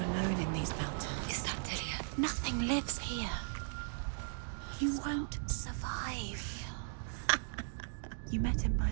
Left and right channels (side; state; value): left; silent; digital silence